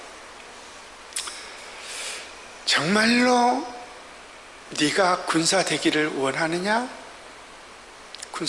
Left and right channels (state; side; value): noise; left; rumble, 29 dB below the sound